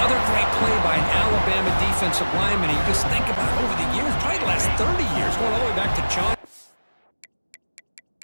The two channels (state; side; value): inverted; both; correlation -1.00